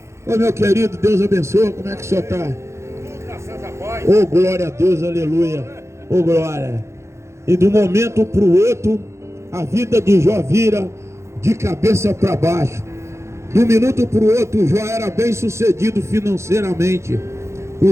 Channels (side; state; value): left; late; 0.13 ms